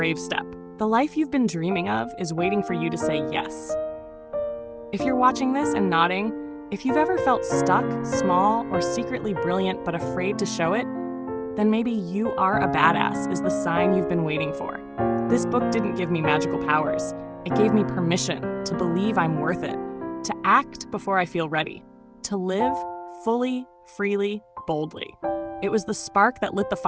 step. The life you've been dreaming of is waiting for you to say yes. If you're watching this and nodding, if you've ever felt stuck, small, or secretly brilliant but afraid to show it, then maybe you are a badass is the sign you've been waiting for. This book didn't give me magical powers. It gave me permission to believe I'm worth it, to act before I feel ready, to live fully, freely, boldly. It was the spark that lit the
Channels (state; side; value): identical; both; correlation 1.00